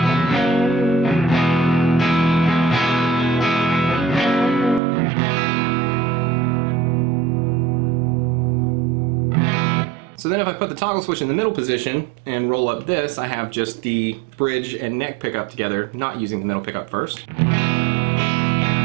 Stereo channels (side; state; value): left; drops out; at 4.8 s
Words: So then if I put the toggle switch in the middle position and roll up this, I have just the bridge and neck pickup together, not using the middle pickup first.